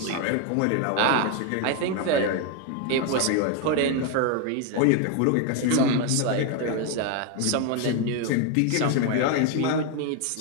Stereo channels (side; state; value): both; different; correlation 0.01